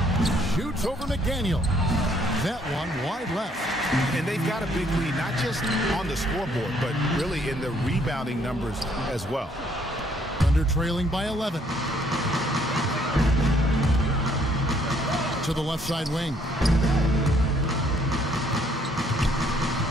Shoots over McDaniel. That one wide left. And they've got a big lead, not just on the scoreboard, but really in the rebounding numbers as well. Under trailing by 11. To the left side wing.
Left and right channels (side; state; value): both; normal; correlation 0.66